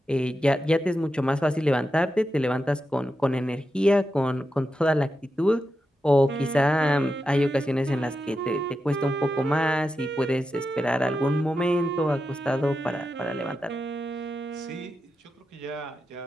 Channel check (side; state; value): both; normal; correlation 0.89